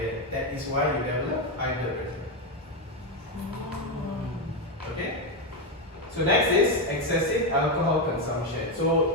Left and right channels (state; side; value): normal; both; correlation 0.07